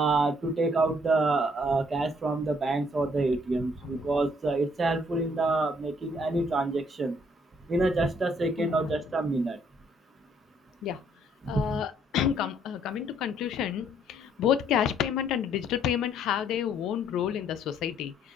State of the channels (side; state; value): both; normal; correlation 0.66